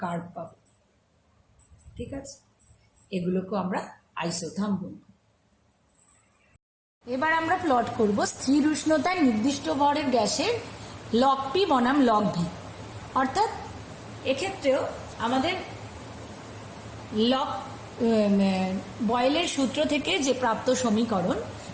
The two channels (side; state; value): both; identical; correlation 1.00